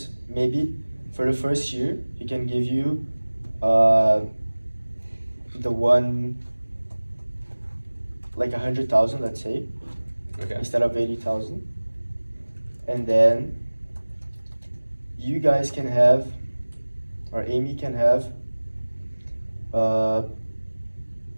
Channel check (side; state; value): both; inverted; correlation -1.00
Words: maybe for the first year he can give you uh, the one like 100,000, let's say, Okay. instead of 80,000, and then you guys can have, or Amy can have. No,